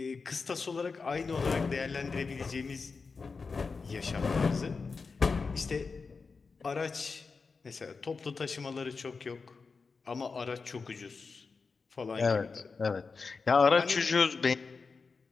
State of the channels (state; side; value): quieter; right; 4.7 dB